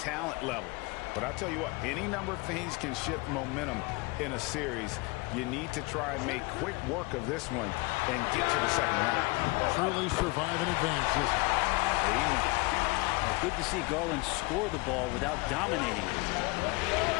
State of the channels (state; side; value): quieter; right; 25.4 dB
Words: level. But I'll tell you what, any number of things can shift momentum in a series. You need to try and make quick work of this one and get to the second round. Truly survive and advance, isn't it? Amen. Well, good to see Garland score the ball without dominating it.